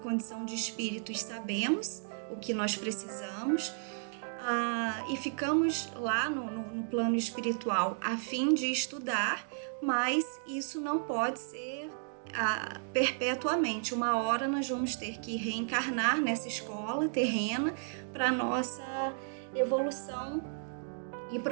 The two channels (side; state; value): left; silent; digital silence